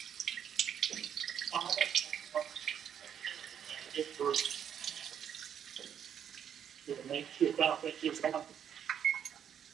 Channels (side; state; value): left; quieter; 8.9 dB